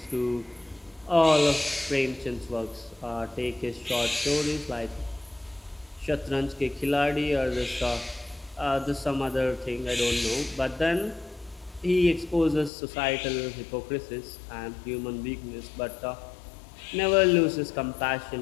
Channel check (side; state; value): right; drops out; at 12.7 s